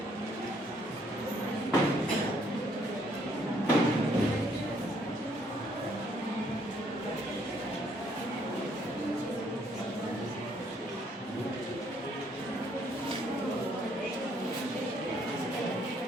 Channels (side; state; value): both; normal; correlation 0.67